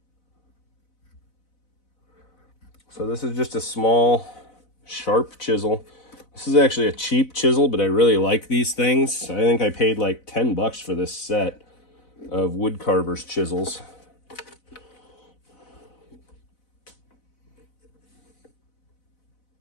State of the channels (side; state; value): right; late; 4.0 ms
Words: So this is just a small, sharp chisel. This is actually a cheap chisel, but I really like these things. I think I paid like 10 bucks for this set of wood carver's chisels.